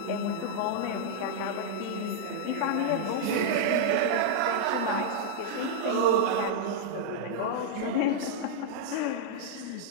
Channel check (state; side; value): different; both; correlation -0.01